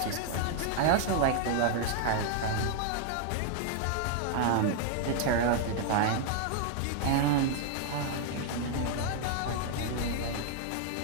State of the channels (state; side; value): different; both; correlation 0.00